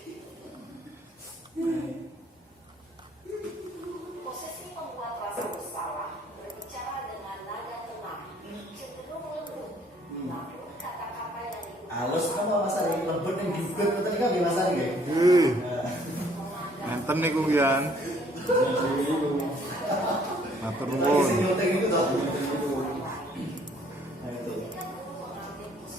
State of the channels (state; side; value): normal; both; correlation 0.61